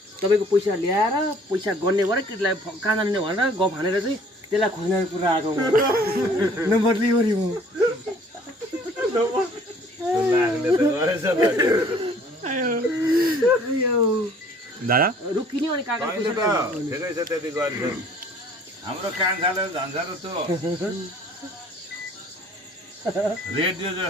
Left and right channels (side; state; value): both; normal; correlation 0.55